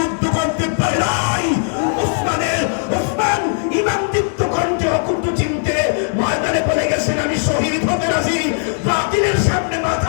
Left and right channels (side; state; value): right; silent; 56 dB below the other